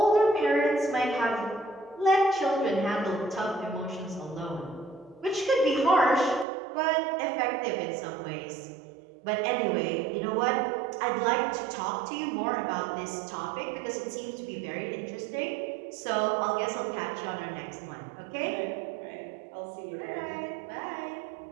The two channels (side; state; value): left; drops out; at 6.5 s